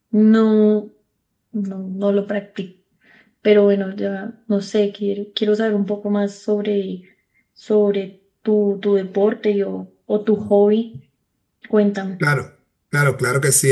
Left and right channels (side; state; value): both; identical; correlation 1.00